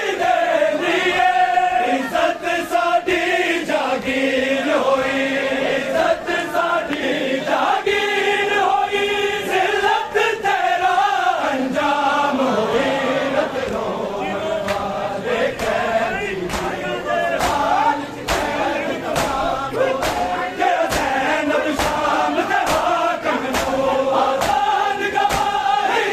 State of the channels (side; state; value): both; identical; correlation 1.00